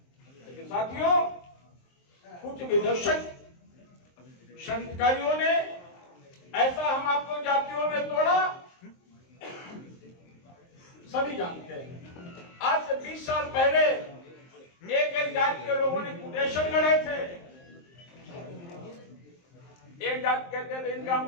लेकिन साथियों, कुछ विदर्शक संस्कारियों ने ऐसा हम आपको जातियों में तोड़ा, सभी जानते हैं। आज से 20 साल पहले एक जाति के लोगों ने कुटेशन गढ़े थे। एक जाति कहते थे इनका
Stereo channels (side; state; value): right; late; 23 ms